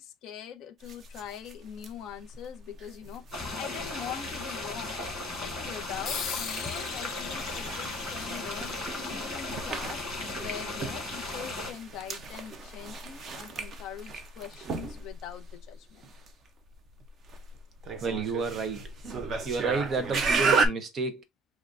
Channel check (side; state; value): both; normal; correlation 0.53